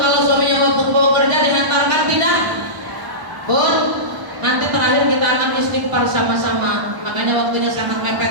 suaminya mau kerja dihantarkan tidak? Bun, nanti terakhir kita akan istighfar sama-sama. Makanya waktunya sangat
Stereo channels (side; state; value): left; late; 1.0 ms